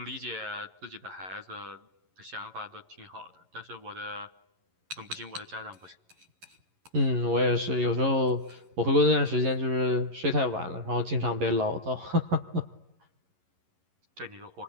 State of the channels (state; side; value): late; left; 11 ms